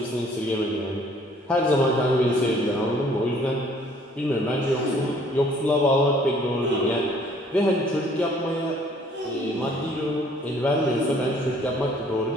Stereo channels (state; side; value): normal; both; correlation 0.59